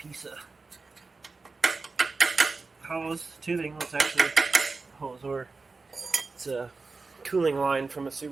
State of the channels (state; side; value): quieter; left; 4.0 dB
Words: of hose, tubing. It's actually a hose, or it's a cooling line from a